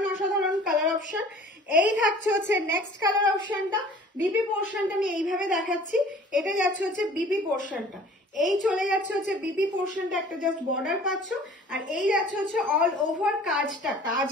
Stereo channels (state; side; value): normal; both; correlation 0.48